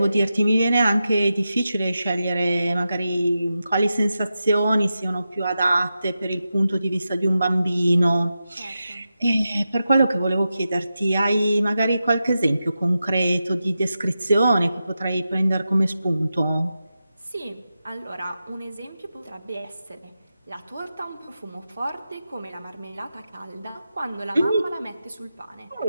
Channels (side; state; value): both; inverted; correlation -0.90